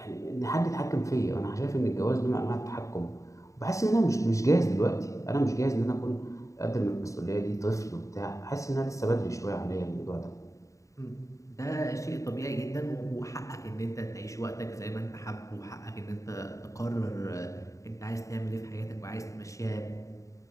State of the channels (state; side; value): late; right; 0.16 ms